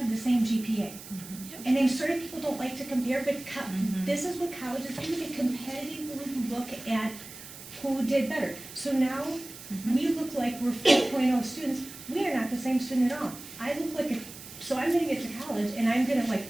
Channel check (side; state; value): right; noise; hiss, 15 dB below the sound